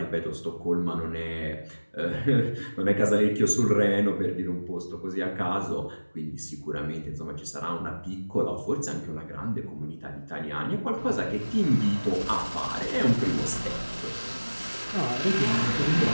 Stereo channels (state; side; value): inverted; both; correlation -1.00